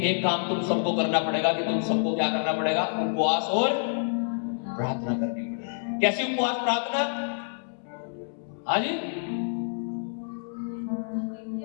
एक काम तुम सबको करना पड़ेगा कि तुम सबको क्या करना पड़ेगा? उपवास और प्रार्थना करनी पड़ेगी। कैसी उपवास प्रार्थना? हाँ जी,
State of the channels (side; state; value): right; silent; 60 dB below the other